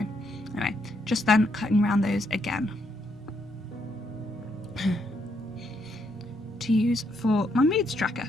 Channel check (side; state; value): both; normal; correlation 0.75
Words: Anyway, just then cutting around those again to use for my moods tracker.